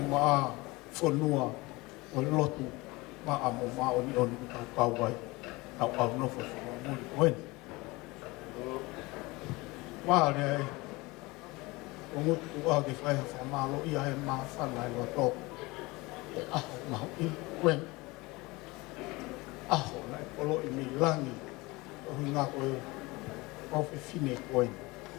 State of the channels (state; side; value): quieter; right; 22.9 dB